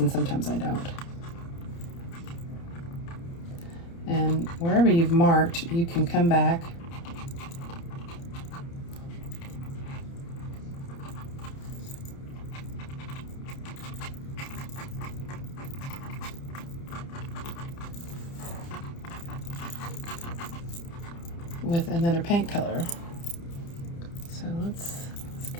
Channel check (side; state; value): right; late; 30 ms